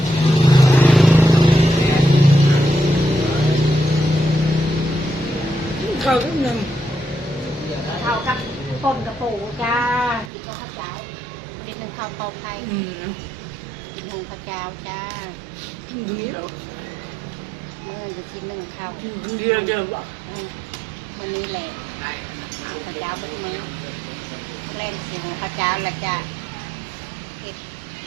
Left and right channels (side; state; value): left; drops out; at 10.3 s